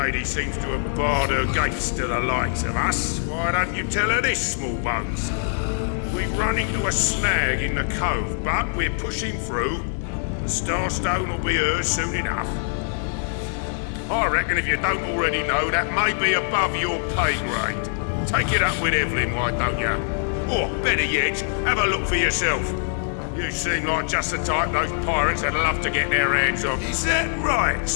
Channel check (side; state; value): right; silent; digital silence